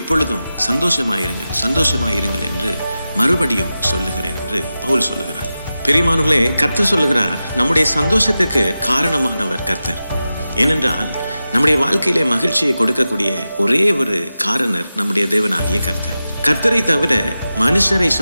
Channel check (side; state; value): both; inverted; correlation -0.93